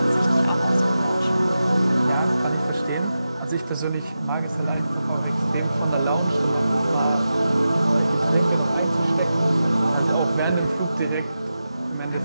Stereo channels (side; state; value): both; inverted; correlation -0.91